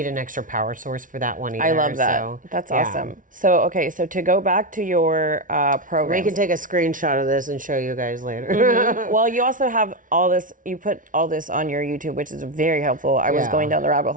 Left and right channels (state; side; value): late; left; 0.38 ms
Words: an extra power source for that one either. I love that. So, That's yeah. awesome. So, okay, so to go back to your We program. can take a screenshot of this and show you guys later. Well, you also have all this, you put all this on your YouTube, which is very helpful. I was Yeah. going down the rabbit